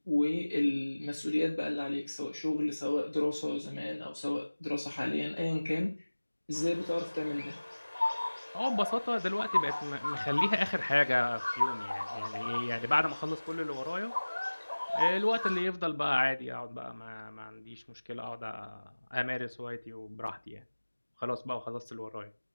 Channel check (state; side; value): inverted; both; correlation -1.00